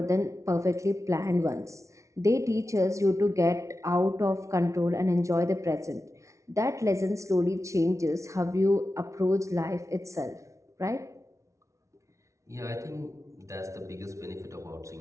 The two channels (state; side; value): late; left; 0.14 ms